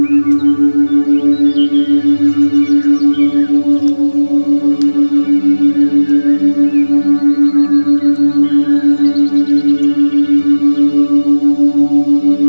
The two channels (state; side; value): inverted; both; correlation -1.00